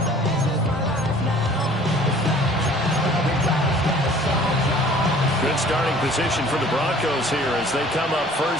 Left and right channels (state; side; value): normal; both; correlation 0.51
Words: Starting position for the Broncos here as they come up